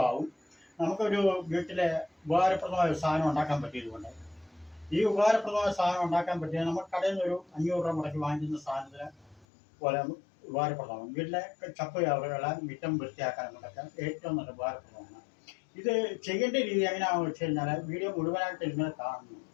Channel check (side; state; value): right; drops out; at 9.5 s